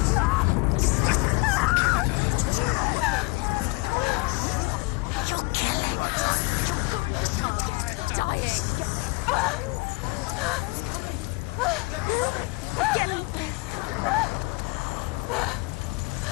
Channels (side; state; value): right; quieter; 25.7 dB